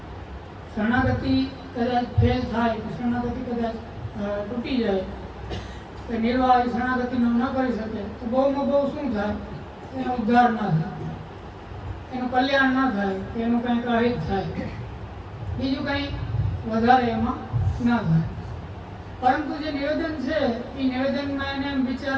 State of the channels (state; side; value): identical; both; correlation 1.00